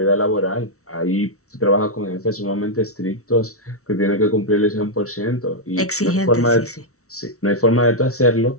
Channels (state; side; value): late; right; 0.64 ms